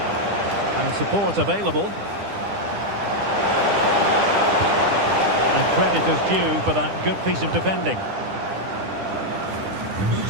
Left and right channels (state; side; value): late; left; 10 ms